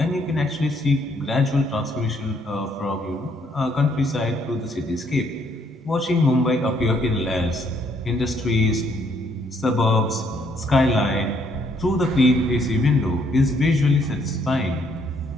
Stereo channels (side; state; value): both; normal; correlation 0.68